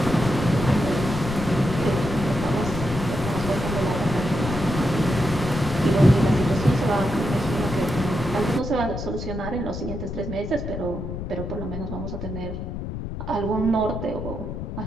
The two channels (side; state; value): left; noise; rumble, 6 dB below the sound